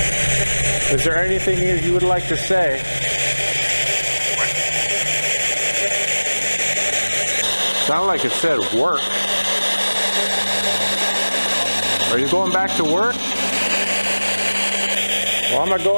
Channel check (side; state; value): both; inverted; correlation -1.00